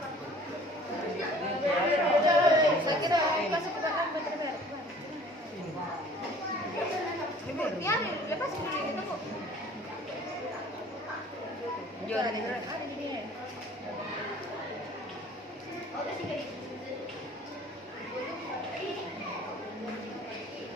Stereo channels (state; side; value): normal; both; correlation 0.50